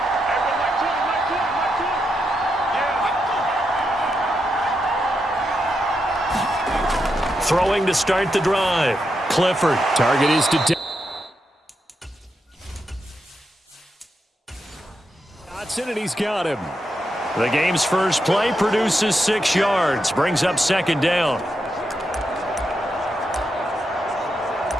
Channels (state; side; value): normal; both; correlation 0.84